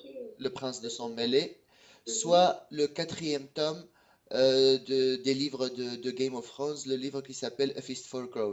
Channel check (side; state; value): both; identical; correlation 1.00